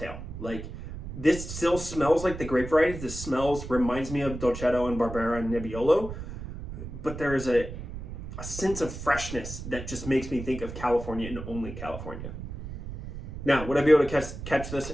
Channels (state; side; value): noise; right; rumble, 9 dB below the sound